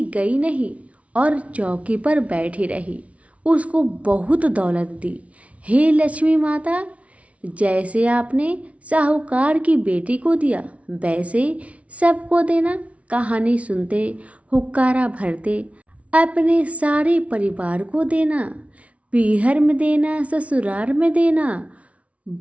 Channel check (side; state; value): left; late; 0.064 ms